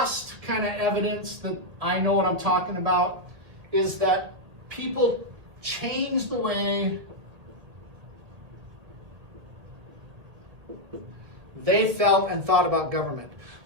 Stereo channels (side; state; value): left; late; 1.7 ms